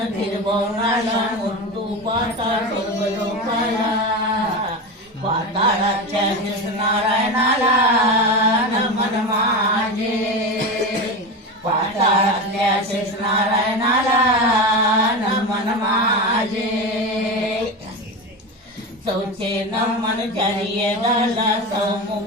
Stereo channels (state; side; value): normal; both; correlation 0.22